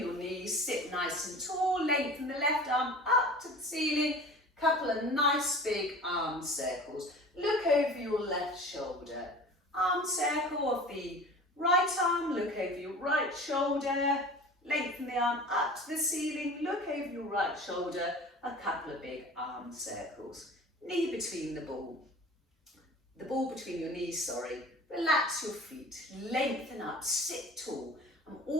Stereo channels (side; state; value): both; normal; correlation 0.40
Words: knees, sit nice and tall, lengthen the left arm up to the ceiling, couple of nice big arm circles. Look over your left shoulder. Arm circle of the right arm, look over your right shoulder, lengthen the arm up to the ceiling, look over your right shoulder, a couple of big arm circles. Knee between the ball between your knees, sorry. Relax your feet, lengthen up, sit tall. I'm